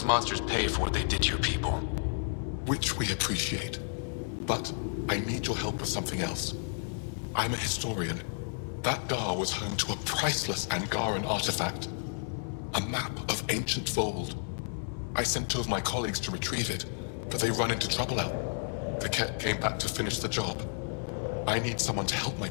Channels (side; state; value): right; silent; 57 dB below the other